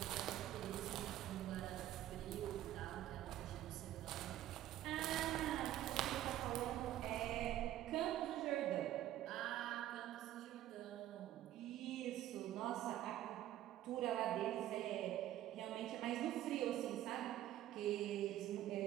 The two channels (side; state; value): left; quieter; 13.1 dB